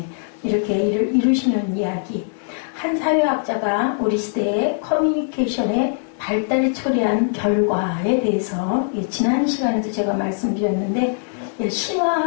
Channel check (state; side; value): silent; right; digital silence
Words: 이렇게 이를 이루시는 이야기. 한 사회학자가 우리 시대의 커뮤니케이션의 발달이 초래한 결과에 대해서 지난 시간에도 제가 말씀드렸는데